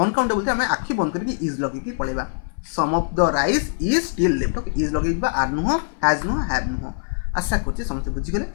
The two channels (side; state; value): right; silent; 57 dB below the other